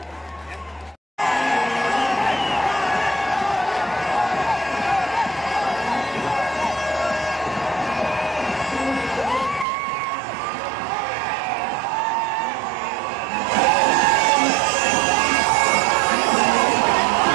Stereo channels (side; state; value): left; drops out; at 9.7 s